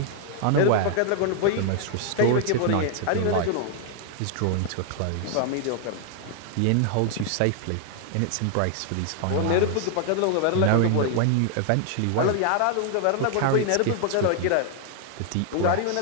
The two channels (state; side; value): different; both; correlation 0.00